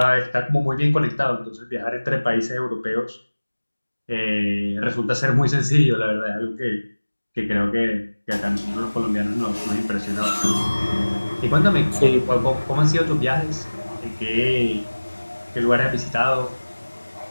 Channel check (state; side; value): inverted; both; correlation -1.00